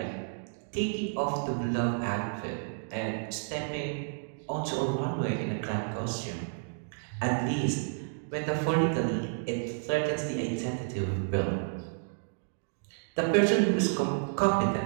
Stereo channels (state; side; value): silent; left; digital silence